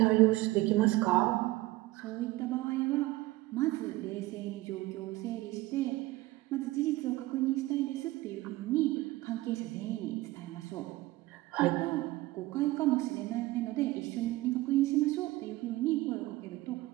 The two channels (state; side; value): quieter; left; 18.7 dB